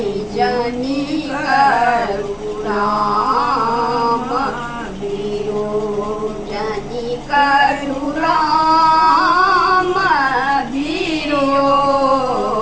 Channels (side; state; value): both; identical; correlation 1.00